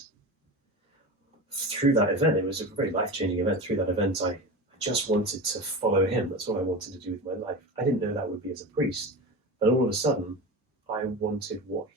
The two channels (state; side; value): normal; both; correlation 0.27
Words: through that event, it was a very life-changing event. Through that event, I just wanted to follow him. That's what I wanted to do with my life. I didn't know that would be as a priest, but all of a sudden, I wanted what